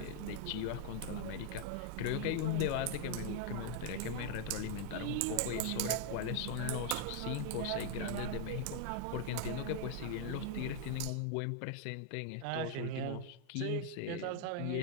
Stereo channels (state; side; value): different; both; correlation 0.00